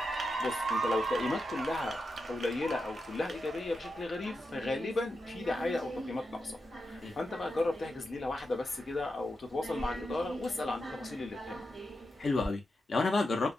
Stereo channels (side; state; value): both; normal; correlation 0.88